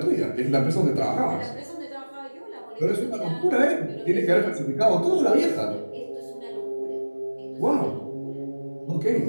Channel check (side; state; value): both; inverted; correlation -1.00